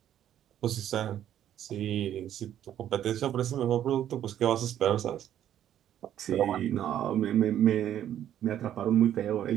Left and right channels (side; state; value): left; quieter; 11.0 dB